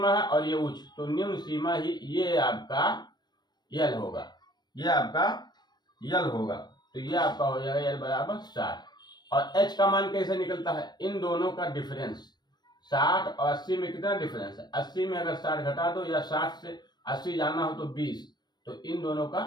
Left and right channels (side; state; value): right; late; 0.21 ms